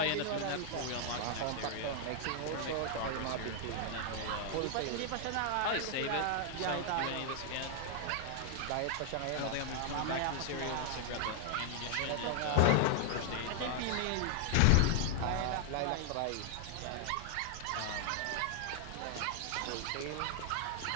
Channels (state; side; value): different; both; correlation 0.00